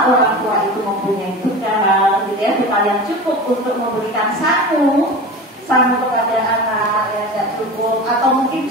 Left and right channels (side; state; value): both; normal; correlation 0.32